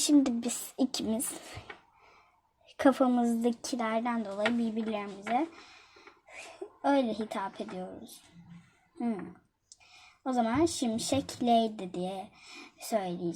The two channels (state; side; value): identical; both; correlation 1.00